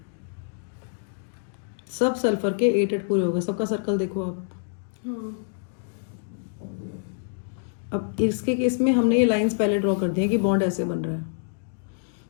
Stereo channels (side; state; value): right; silent; digital silence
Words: सब सल्फर के 8 पूरे हो गए। सबका सर्कल देखो आप। अब इसके केस में हमने ये लाइंस पहले ड्रॉ कर दी हैं कि बॉन्ड ऐसे बन रहा है,